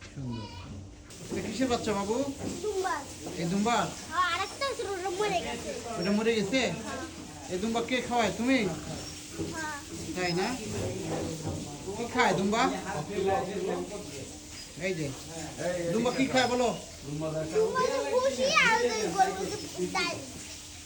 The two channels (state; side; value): identical; both; correlation 1.00